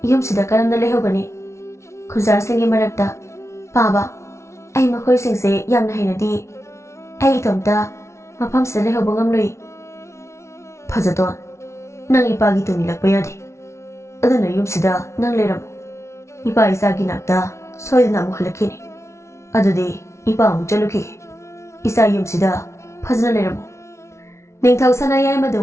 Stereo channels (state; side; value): late; right; 0.13 ms